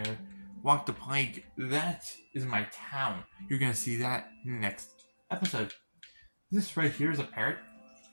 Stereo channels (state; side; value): inverted; both; correlation -1.00